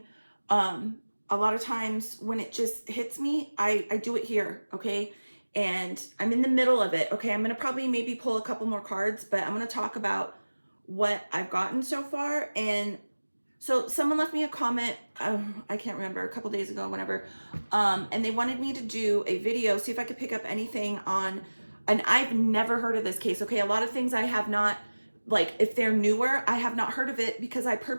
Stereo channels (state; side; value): inverted; both; correlation -1.00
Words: a lot of times when it just hits me, I do it here, okay? And I'm in the middle of it, okay? I'm gonna probably maybe pull a couple more cards, but I'm gonna talk about what I've gotten so far. And so someone left me a comment, I can't remember, a couple days ago, whenever, and they wanted me to do a video, see if I could pick up anything on, and I've never heard of this case, okay? A lot of things I have not, like if they're newer, I have not heard of it because I